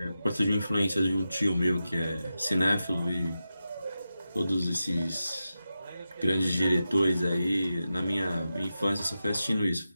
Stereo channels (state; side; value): inverted; both; correlation -0.91